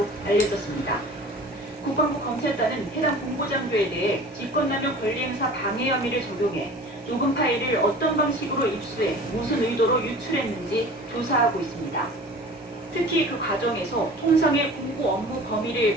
알려졌습니다. 국방부 검찰단은 해당 공보장교에 대해 직권남용 권리행사 방해 혐의를 적용해 녹음 파일을 어떤 방식으로 입수해 무슨 의도로 유출했는지 조사하고 있습니다. 특히 그 과정에서 통상의 공보 업무 범위를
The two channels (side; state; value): both; normal; correlation 0.41